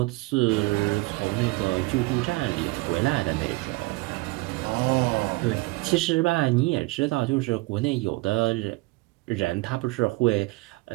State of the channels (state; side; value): quieter; left; 22.7 dB